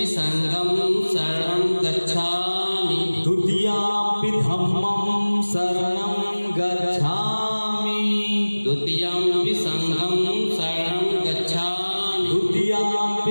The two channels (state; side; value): inverted; both; correlation -1.00